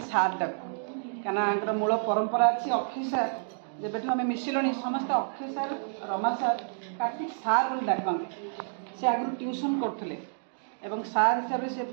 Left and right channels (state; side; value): silent; left; digital silence